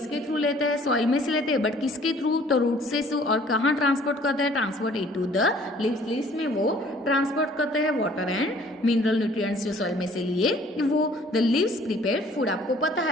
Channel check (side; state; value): both; normal; correlation 0.55